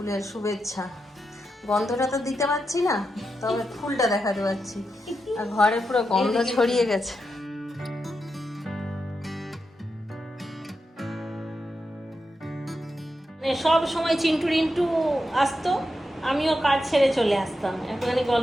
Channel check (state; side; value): normal; both; correlation 0.87